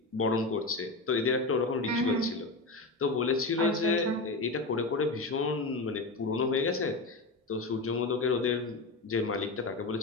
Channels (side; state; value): right; quieter; 3.2 dB